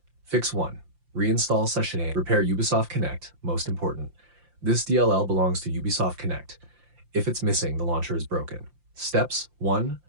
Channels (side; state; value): left; late; 5.7 ms